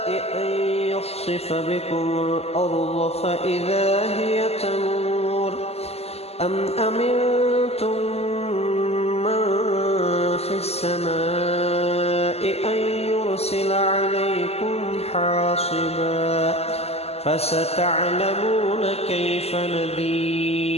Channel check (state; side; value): late; right; 0.30 ms